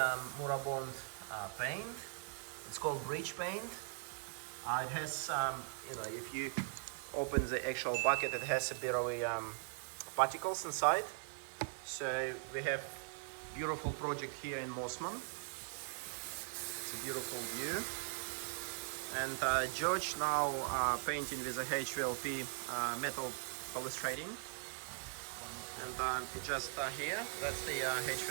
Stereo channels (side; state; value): left; silent; 51 dB below the other